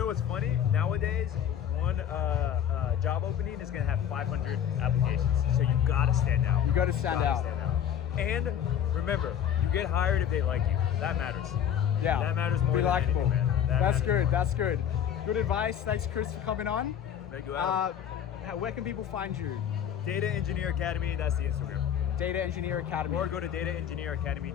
what's funny? Nowadays, one job opening is going to have 500 applications. So you got to stand out. You gotta stand out. And remember, you get hired if they like you. That matters. Yeah. That matters more Be than likable. anything, man. That That's matters. good. That's good. Good advice. Thanks, Chris, for coming on. Thank you, Adam. Where can people find you? Data Engineer Academy, that's the Instagram. Data Engineer Academy. Or go to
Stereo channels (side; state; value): right; quieter; 9.3 dB